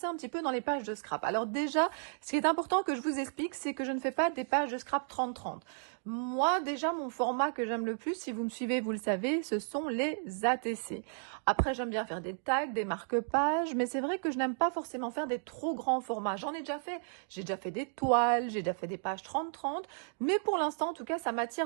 un petit peu dans les pages de scrap. Alors déjà, ce qui est important que je vous explique, c'est que je ne fais pas des pages de scrap 30-30. Moi, déjà, mon format que j'aime le plus, si vous me suivez, vous le savez, ce sont les ATC. Après, j'aime bien faire des tags, des marque-pages, mais c'est vrai que je n'aime pas forcément faire des trop grands formats. J'en ai déjà fait. J'ai déjà fait des toiles, j'ai déjà fait des pages 30-30, mais pour l'instant, en tout cas, ça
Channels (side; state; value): left; silent; digital silence